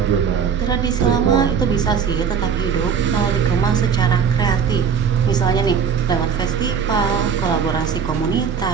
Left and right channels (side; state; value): left; quieter; 6.9 dB